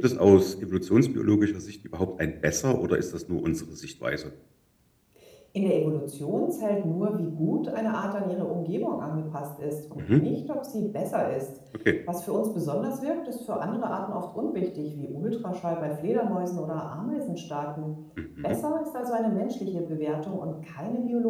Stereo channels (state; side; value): identical; both; correlation 1.00